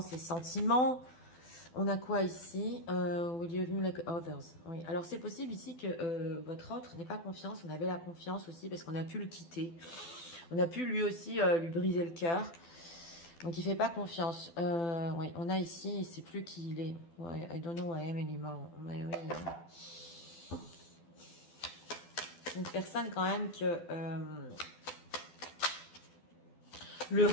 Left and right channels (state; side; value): late; right; 12 ms